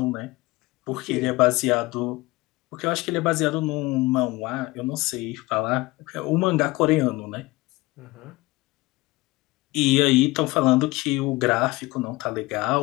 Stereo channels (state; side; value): quieter; right; 21.4 dB